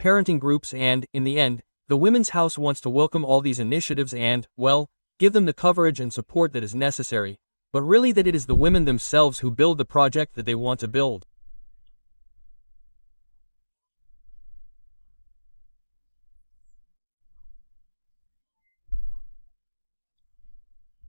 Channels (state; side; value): inverted; both; correlation -1.00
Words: groups and, in the end, the Women's House wants to welcome all these initiatives and, well, give them the coverage and support that is necessary, but really that it is the women themselves who build the project that they want to build.